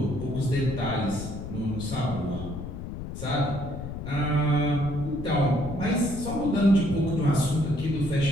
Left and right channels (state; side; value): noise; left; rumble, 8 dB below the sound